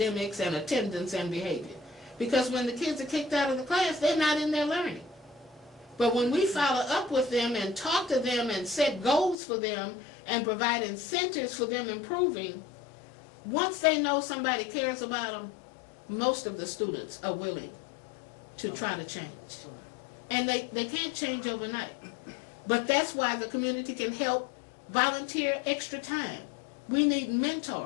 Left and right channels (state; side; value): drops out; right; at 9.3 s